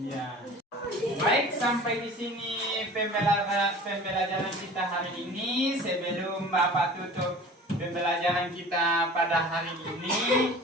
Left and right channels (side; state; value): both; normal; correlation 0.41